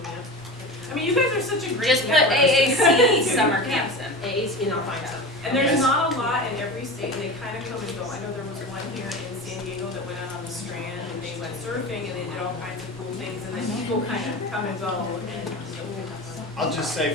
at? You guys are such a great Just put network. AAC summer camps in, AAC, and I'll find some. And there's not a lot in every state, and they kind of come and go. I know there was one here in San Diego that went out on the Strand, and they went surfing, and they did all kinds of cool things, and then people kind of come and go, and I'll just say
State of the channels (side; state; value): both; normal; correlation 0.30